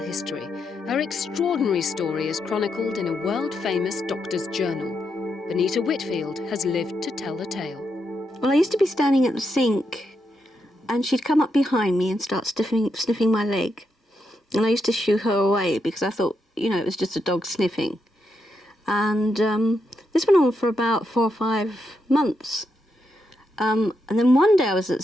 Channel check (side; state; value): both; normal; correlation 0.82